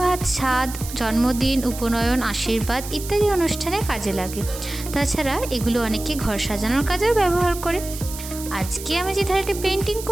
ছাদ, জন্মদিন, উপনয়ন, আশীর্বাদ ইত্যাদি অনুষ্ঠানে কাজে লাগে। তাছাড়া এগুলো অনেকে ঘর সাজানোর কাজেও ব্যবহার করে। আজকে আমি যে থালিটি পেন্টিং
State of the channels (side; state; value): right; noise; hiss, 11 dB below the sound